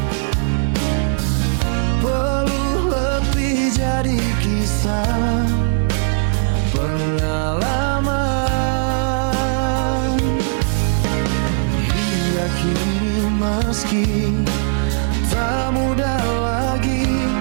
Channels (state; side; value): silent; left; digital silence